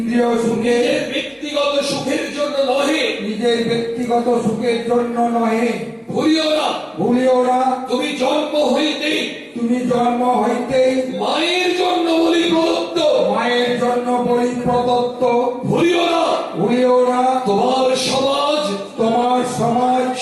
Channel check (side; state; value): both; identical; correlation 1.00